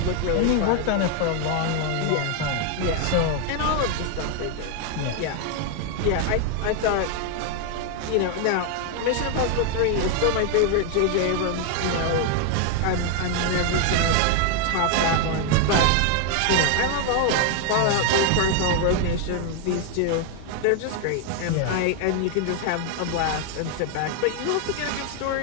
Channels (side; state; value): both; different; correlation 0.00